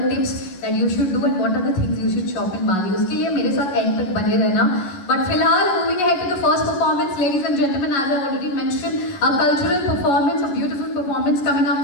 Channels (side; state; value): right; late; 11 ms